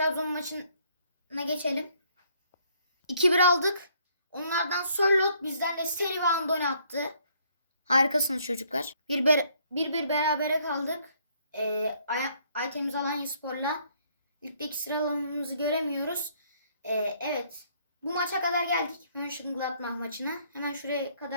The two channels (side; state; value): both; inverted; correlation -0.66